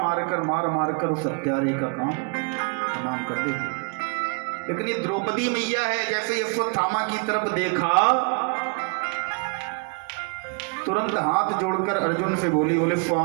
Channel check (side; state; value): left; quieter; 35.7 dB